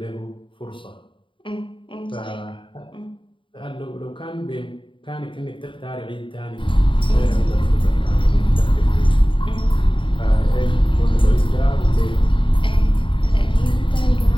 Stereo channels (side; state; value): right; late; 0.25 ms